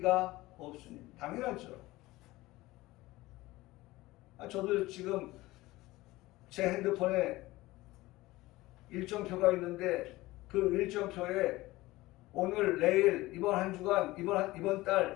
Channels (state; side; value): quieter; right; 18.9 dB